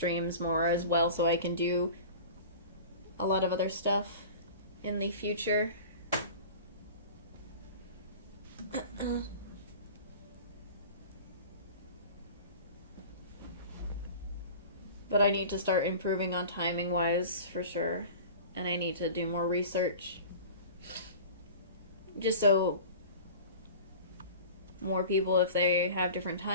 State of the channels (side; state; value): both; inverted; correlation -0.38